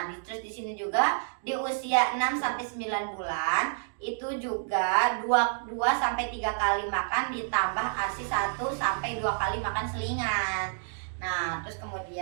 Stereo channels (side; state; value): left; silent; digital silence